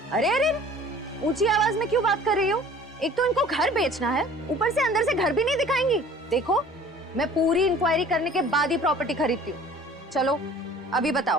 अरे अरे, ऊंची आवाज में क्यों बात कर रही हो? एक तो इनको घर बेचना है, ऊपर से अंदर से घर भी नहीं दिखाएंगी। देखो, मैं पूरी इंक्वायरी करने के बाद ही प्रॉपर्टी खरीदती हूँ। चलो अभी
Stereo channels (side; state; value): both; normal; correlation 0.48